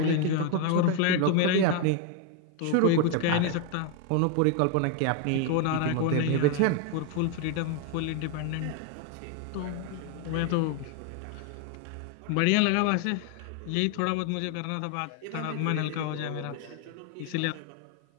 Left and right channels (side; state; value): both; different; correlation 0.01